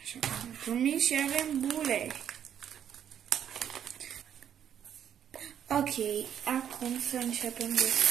Așa cum am promis, și avem bule. Ok, acum să începem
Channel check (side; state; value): left; quieter; 9.4 dB